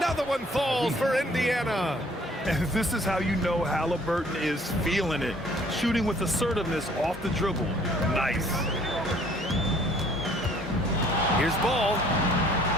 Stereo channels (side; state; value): both; normal; correlation 0.58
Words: one falls for Indiana. And this is how you know Halliburton is feeling it. Shooting with assertiveness off the dribble. Nice. Here's Ball.